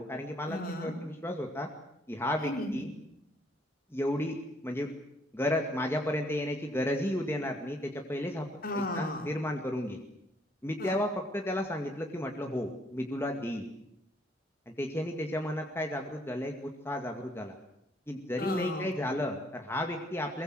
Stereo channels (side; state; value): both; normal; correlation 0.66